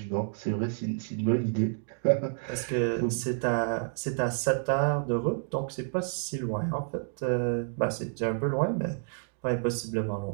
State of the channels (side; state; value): left; silent; digital silence